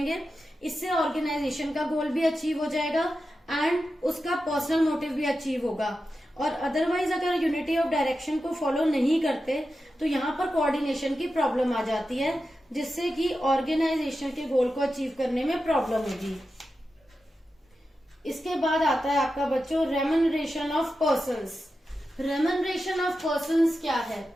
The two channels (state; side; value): normal; both; correlation 0.91